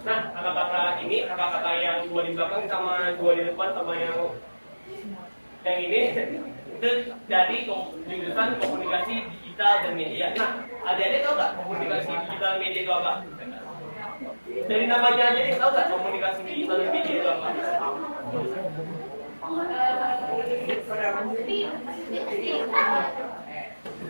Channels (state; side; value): inverted; both; correlation -1.00